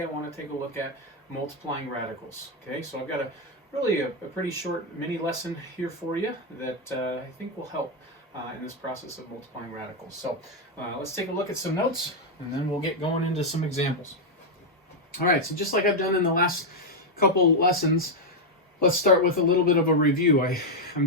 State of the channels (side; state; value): both; normal; correlation 0.01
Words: I want to take a look at multiplying radicals. Okay, so I've got a pretty short mini lesson here for you that I think will help in this process of multiplying radicals. So let's take a look at some notes and then we'll get going into some examples. All right, so just like I've done in the last couple lessons, let's start with a little bit of a review. I'm